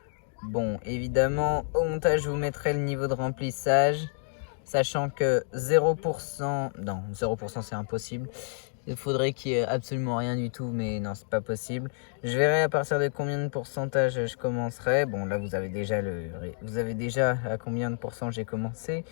Bon, évidemment, au montage, je vous mettrai le niveau de remplissage. Sachant que 0%... Non, 0% c'est impossible. Il faudrait qu'il y ait absolument rien du tout, mais non, c'est pas possible. Je verrai à partir de combien de pourcentage je commencerai. Bon, là, vous avez déjà à combien de pourcents j'ai commencé.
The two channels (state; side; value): silent; right; digital silence